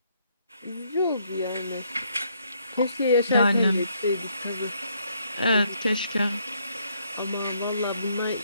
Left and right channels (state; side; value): inverted; both; correlation -0.71